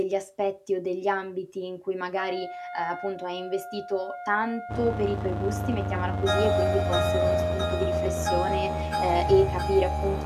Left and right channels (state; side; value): identical; both; correlation 1.00